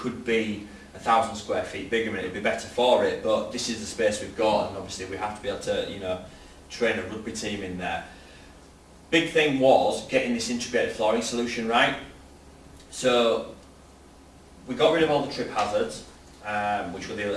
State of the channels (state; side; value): identical; both; correlation 1.00